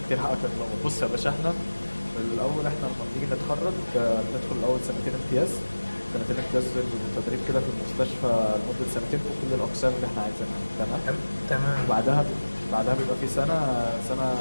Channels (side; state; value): both; inverted; correlation -1.00